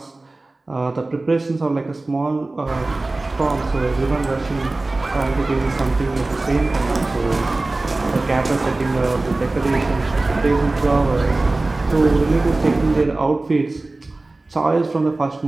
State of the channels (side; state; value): left; quieter; 3.1 dB